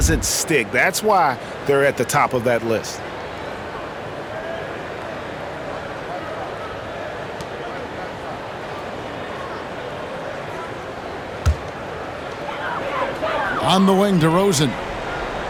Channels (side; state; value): both; identical; correlation 1.00